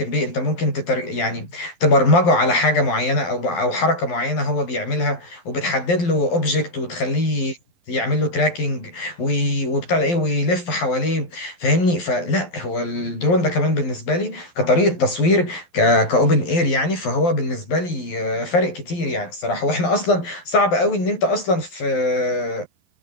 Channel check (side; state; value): right; late; 12 ms